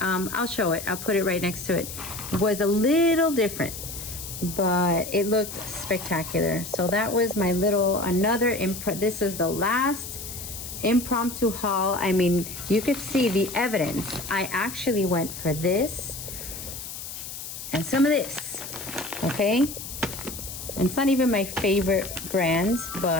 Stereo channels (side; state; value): left; noise; hiss, 9 dB below the sound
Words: show it. I'll put it right next to it. Was a little different, but it looked spectacular. So that was my little, this is the last impromptu haul. I mean, you could see the evidence. I actually went for this and some of this, okay? And it's not even my favorite brand,